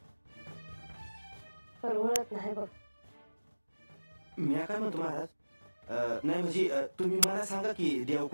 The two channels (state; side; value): inverted; both; correlation -1.00